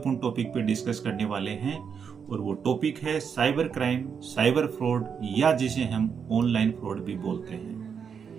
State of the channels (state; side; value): quieter; left; 6.8 dB